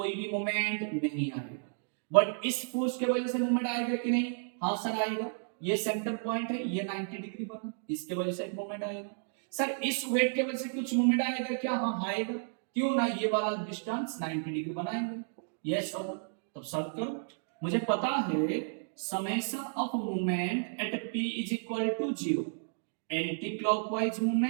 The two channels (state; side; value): silent; left; digital silence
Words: भी मूवमेंट नहीं आएगा। बट इस फोर्स के वजह से मूवमेंट आएगा कि नहीं, हाँ सर आएगा। ये सेंटर पॉइंट है, ये 90 डिग्री बना, इसके वजह से एक मूवमेंट आएगा। सर इस वेट के वजह से कुछ मूवमेंट आएगा क्या, हाँ आएगा। क्यों ना, ये वाला डिस्टेंस 90 डिग्री बनाएंगे, यस सर। तब सॉल्व करो, मुझे पता है summation of movement at p is equal to 0, anti clockwise